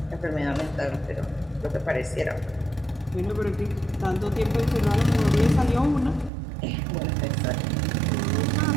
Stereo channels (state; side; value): drops out; left; at 6.3 s